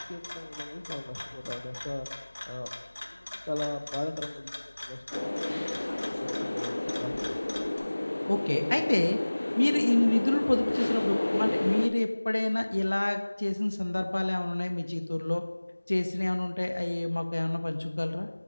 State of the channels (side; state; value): both; inverted; correlation -1.00